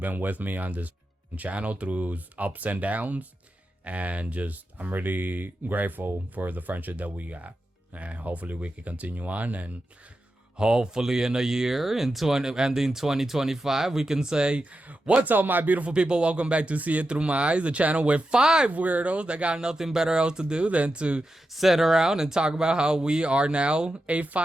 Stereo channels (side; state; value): both; normal; correlation 0.89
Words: been with me on this channel through ups and downs, and I'm really grateful for the friendship that we got. And hopefully we can continue on, and hopefully in a year, ending 2025, we can say, what's up, my beautiful people? Welcome back to See It Through My Eyes, the channel with 5 weirdos that got nothing better else to do than to sit around and talk about how we are now a